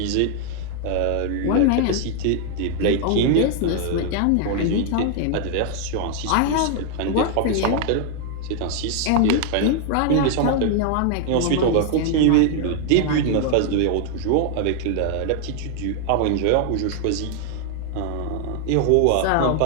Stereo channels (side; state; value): both; different; correlation 0.00